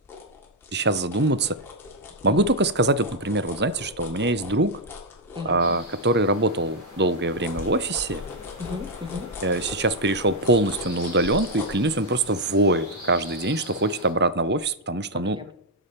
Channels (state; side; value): normal; both; correlation 0.00